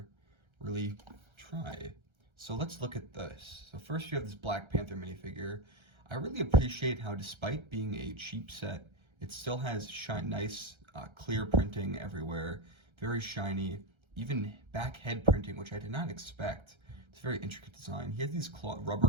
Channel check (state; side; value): late; left; 1.3 ms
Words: really try. So let's look at this. So first you have this Black Panther minifigure. I really appreciate how, despite being a cheap set, it still has nice clear printing everywhere. Very shiny. Even back head printing, which I did not expect. It's a very intricate design. He has these